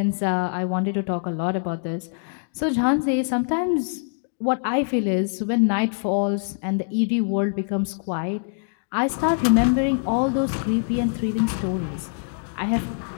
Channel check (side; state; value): right; silent; 59 dB below the other